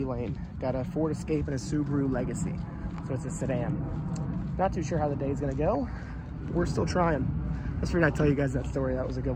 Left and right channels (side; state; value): both; identical; correlation 1.00